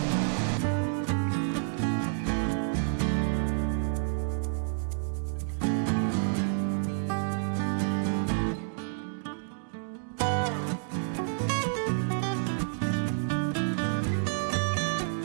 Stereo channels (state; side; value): silent; left; digital silence